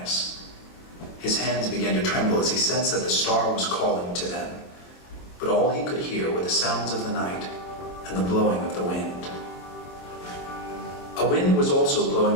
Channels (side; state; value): right; late; 23 ms